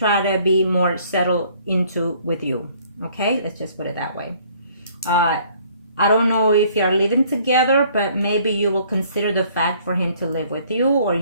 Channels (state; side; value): inverted; both; correlation -0.59